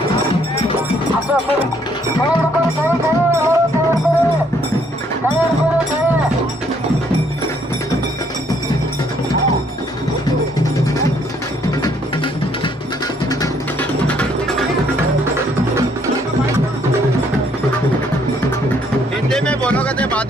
हिंदी में बोलोगे तो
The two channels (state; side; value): normal; both; correlation 0.67